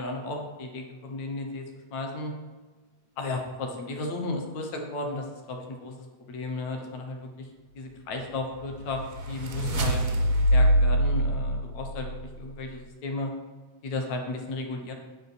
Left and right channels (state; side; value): late; right; 8.1 ms